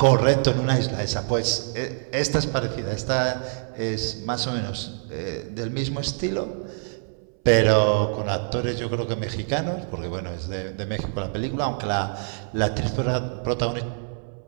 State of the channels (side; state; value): left; silent; 62 dB below the other